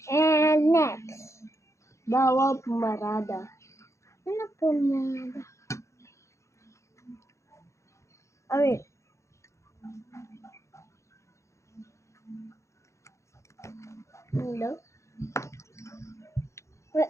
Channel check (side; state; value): right; late; 0.14 ms